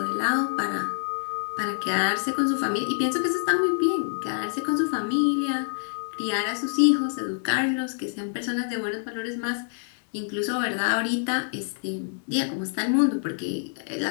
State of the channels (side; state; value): right; silent; digital silence